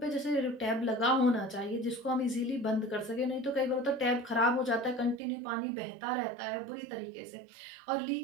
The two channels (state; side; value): drops out; left; at 5.2 s